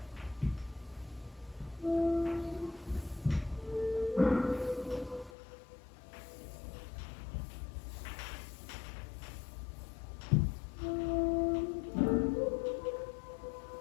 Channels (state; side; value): drops out; right; at 5.3 s